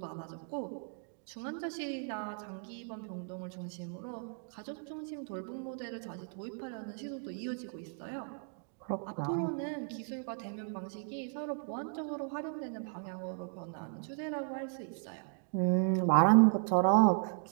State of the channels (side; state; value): left; silent; 54 dB below the other